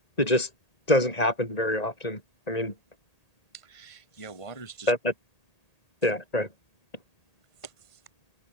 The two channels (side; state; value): right; late; 1.9 ms